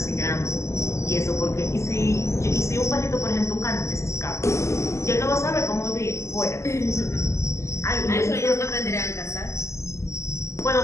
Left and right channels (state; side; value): late; right; 0.14 ms